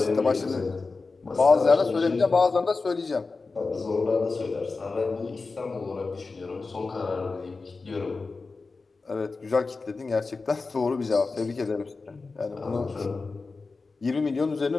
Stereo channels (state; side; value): quieter; right; 4.0 dB